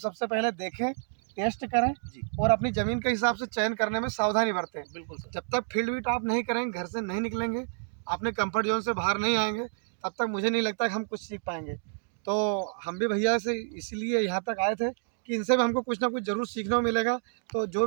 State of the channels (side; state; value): left; silent; 56 dB below the other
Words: पहले देखें, टेस्ट करें जी, और अपनी ज़मीन के हिसाब से चयन करने में सावधानी बरतें। बिल्कुल सर। जब तक फील्ड विजिट आप नहीं करेंगे, घर से नहीं निकलेंगे, अपने कंफर्ट जोन से बाहर नहीं आएंगे, तब तक मुझे नहीं लगता कि हम कुछ सीख पाएंगे। तो हम भी भैया से इसीलिए यहाँ तक आए थे कि इनसे भी हमको कुछ ना कुछ ज़रूर सीखने को मिलेगा। तो जो